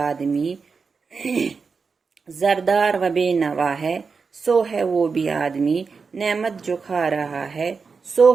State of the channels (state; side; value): quieter; left; 5.1 dB